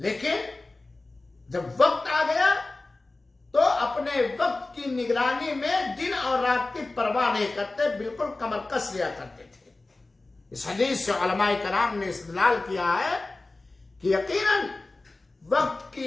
جب وقت آ گیا تو اپنے وقت کی نگرانی میں دن اور رات کی پرواہ نہیں کرتے، بالکل کمر کس لیا کرتے تھے۔ اس حدیث سے علماء کرام نے استدلال کیا ہے کہ یقیناً وقت کی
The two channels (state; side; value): quieter; right; 3.2 dB